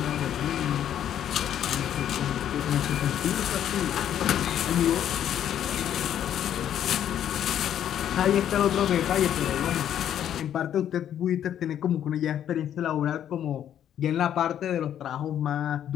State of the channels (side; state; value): right; quieter; 10.3 dB